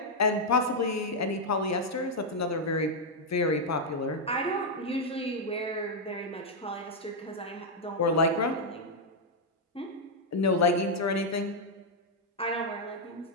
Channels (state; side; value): normal; both; correlation -0.02